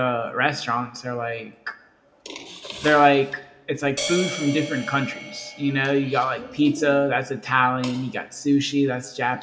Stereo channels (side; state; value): both; identical; correlation 1.00